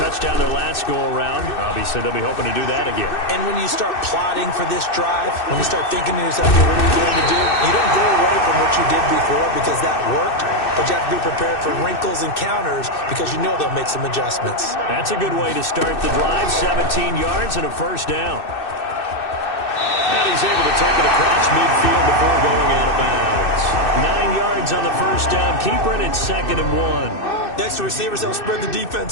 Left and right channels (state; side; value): late; right; 2.6 ms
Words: their last go-around. Obviously, they'll be hoping to do that again. And when you start plotting for this drive, when you start thinking to yourself, hey, what are you going to do? You don't go away from what you did before because that worked. But you have to be prepared for wrinkles and counters because you know they'll make some adjustments. That's a good way to start the drive. 17 yards and a first down. And he's able to take it across midfield before going out of bounds. 9 yards on the first down. Keeper, and it's 2nd and 1. Next, the receivers helped spread the